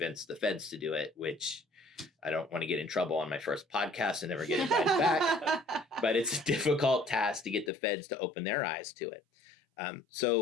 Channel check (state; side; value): drops out; right; at 7.7 s